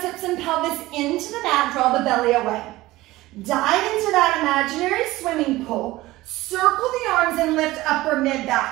hips and pelvis into the mat, draw the belly away. Dive into that imaginary swimming pool. Circle the arms and lift upper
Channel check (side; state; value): left; quieter; 18.1 dB